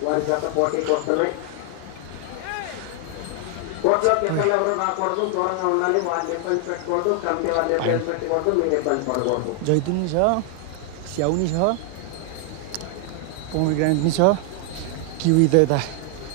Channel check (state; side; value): different; both; correlation 0.00